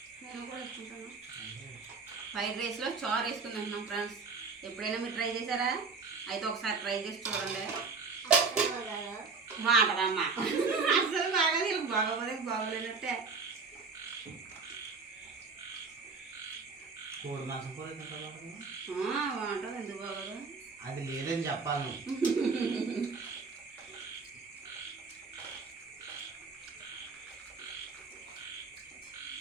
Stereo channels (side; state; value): left; quieter; 4.6 dB